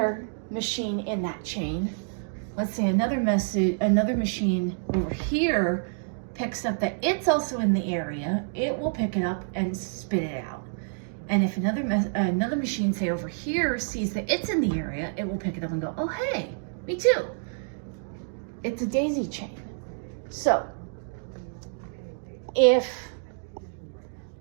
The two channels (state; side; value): silent; left; digital silence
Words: machine in that chain, let's say another machine over here picks up that it's also in the area, it will pick it up and spit it out. And if another machine, say over here, sees that it's in the area, it will pick it up and go, oh, hey, me too. It's a daisy chain. So